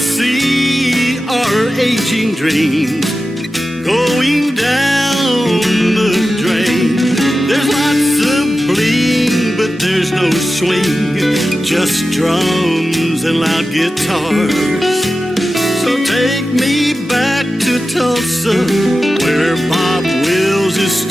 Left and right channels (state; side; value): normal; both; correlation 0.93